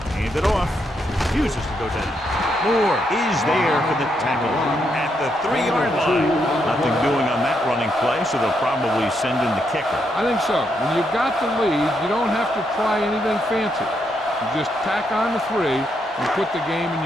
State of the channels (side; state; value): both; normal; correlation 0.79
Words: Hand it off. Refuses to go down. Moore is there for the tackle at the 3-yard line. Nothing doing on that running play, so they'll probably send in the kicker. I think so. When you've got the lead, you don't have to try anything fancy. You just tack on the 3 and put the game in